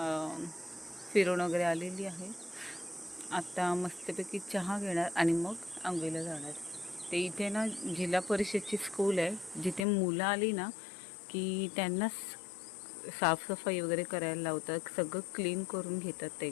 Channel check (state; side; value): drops out; right; at 9.9 s